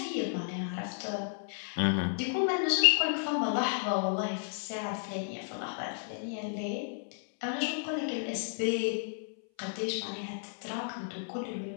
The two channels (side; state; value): right; silent; 56 dB below the other